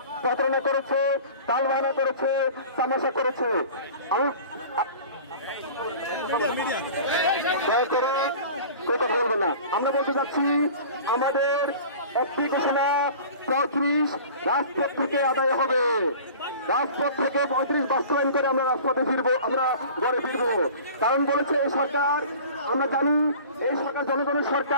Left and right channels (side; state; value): both; inverted; correlation -0.41